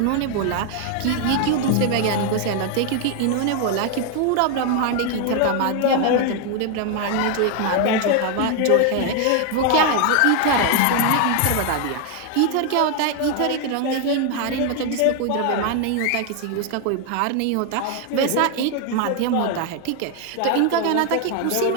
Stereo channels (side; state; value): both; different; correlation 0.01